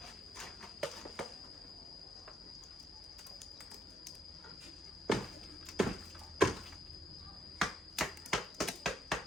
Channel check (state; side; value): normal; both; correlation 0.73